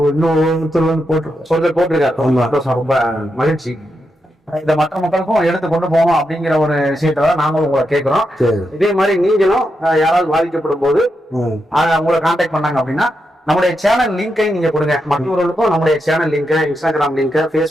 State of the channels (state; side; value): normal; both; correlation 0.85